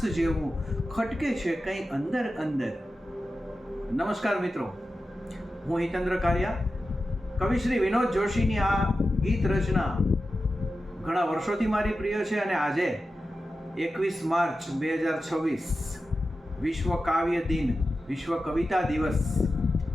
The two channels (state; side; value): normal; both; correlation 0.92